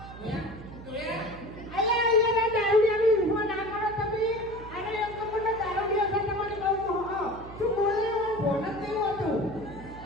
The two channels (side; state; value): right; noise; hum, 15 dB below the sound